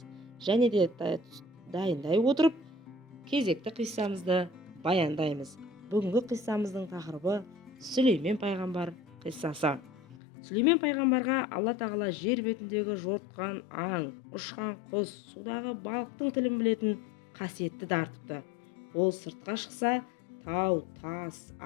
Және де дайындай отырып, кезекті қиссамызды баяндаймыз. Бүгінгі қиссамыздың тақырыбы Сүлеймен пайғамбар қиссасы. Сүлеймен пайғамбарға Алла тағала жер бетіндегі жортқан аң, ұшқан құс, судағы балықтың тілін білетін қасиетті дарытыпты. Ол сыртқа шықса, тау, тас,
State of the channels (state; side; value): drops out; right; at 10.2 s